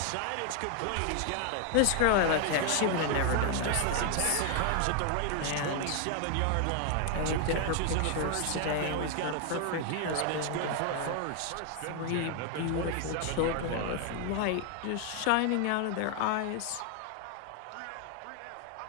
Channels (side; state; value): both; different; correlation 0.00